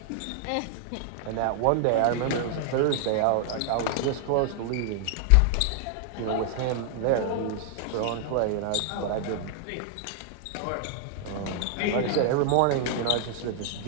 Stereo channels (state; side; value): different; both; correlation -0.01